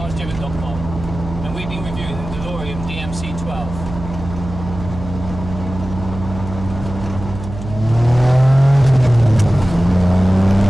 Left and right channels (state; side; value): noise; right; hum, 10 dB below the sound